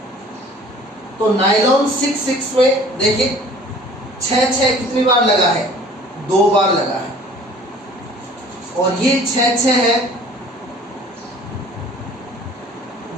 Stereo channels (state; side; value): normal; both; correlation 0.50